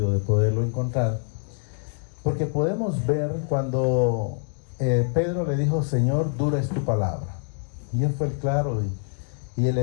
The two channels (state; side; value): silent; right; 62 dB below the other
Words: de poderlo encontrar. Porque podemos ver cuando Pedro le dijo, Señor, dura es tu palabra. Y él fue claro y él